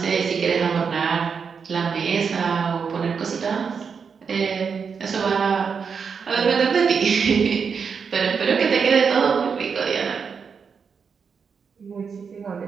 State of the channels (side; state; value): left; quieter; 6.1 dB